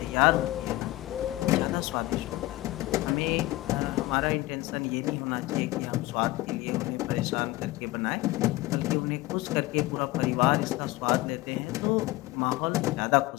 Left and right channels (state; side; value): quieter; right; 18.9 dB